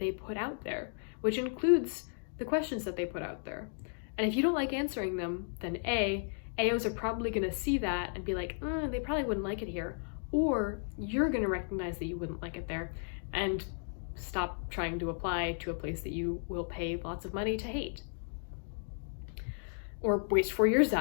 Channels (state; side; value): silent; right; digital silence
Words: put out there, which includes the questions that they put out there. And if you don't like answering them, then AOs are probably going to see that and be like, they probably wouldn't like it here. Or you're going to recognize that you wouldn't like it there and stop trying to apply to a place that you will pay lots of money to hate. Or waste 4 years